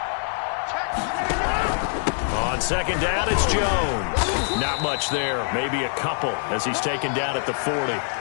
On 2nd down, it's Jones. Not much there, maybe a couple as he's taken down at the 40.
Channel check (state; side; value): silent; right; digital silence